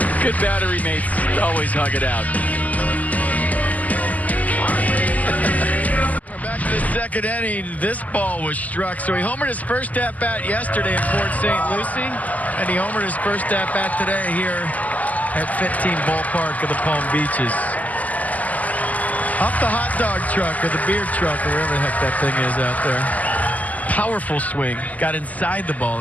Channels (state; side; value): late; right; 0.077 ms